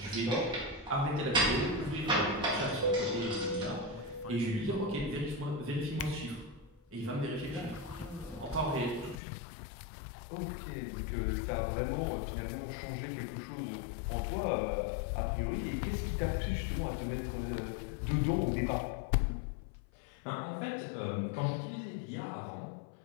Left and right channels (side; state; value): right; drops out; at 9.2 s